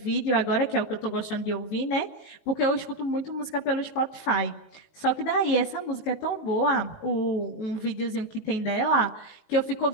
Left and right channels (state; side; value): late; right; 19 ms